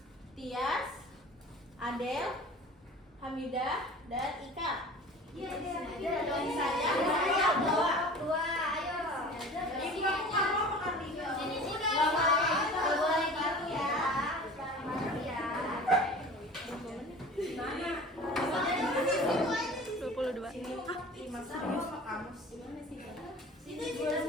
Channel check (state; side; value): normal; both; correlation 0.41